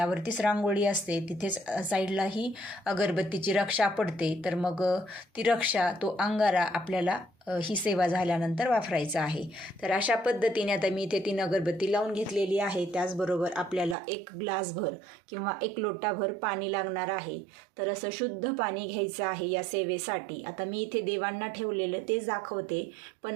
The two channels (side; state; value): left; drops out; at 14.0 s